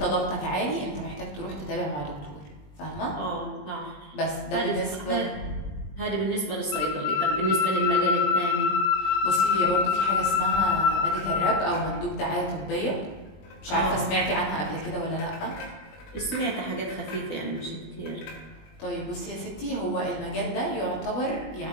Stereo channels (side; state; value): right; late; 20 ms